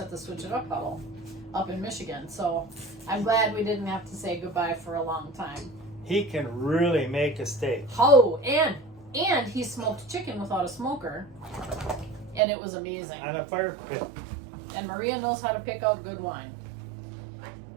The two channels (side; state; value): left; drops out; at 12.4 s